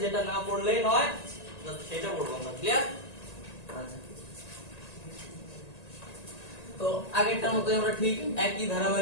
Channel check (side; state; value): right; late; 1.9 ms